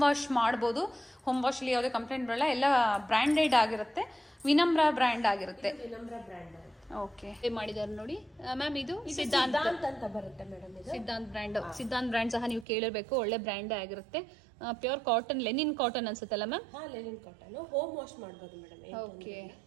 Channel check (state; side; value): drops out; left; at 12.7 s